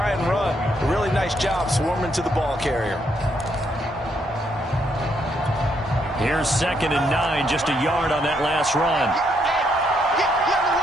and run. A really nice job swarming to the ball carrier. Here's 2nd and 9, just a yard on that last run.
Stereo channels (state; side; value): normal; both; correlation 0.74